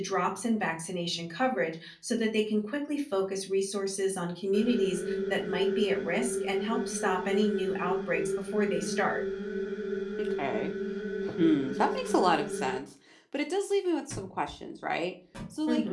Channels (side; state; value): both; identical; correlation 1.00